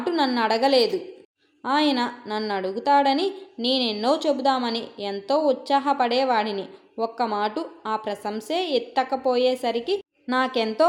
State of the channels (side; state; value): both; identical; correlation 1.00